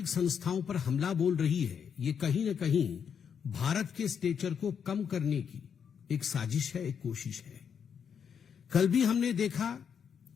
संस्थाओं पर हमला बोल रही है, ये कहीं न कहीं भारत के स्टेचर को कम करने की एक साजिश है, एक कोशिश है। कल भी हमने देखा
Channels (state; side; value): quieter; right; 7.4 dB